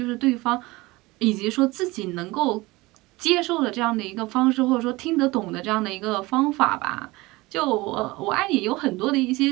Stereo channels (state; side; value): quieter; left; 21.5 dB